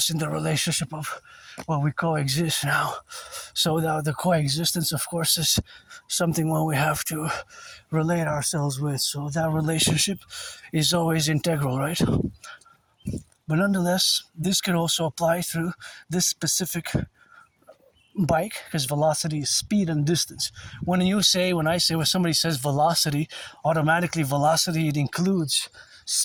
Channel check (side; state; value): both; identical; correlation 1.00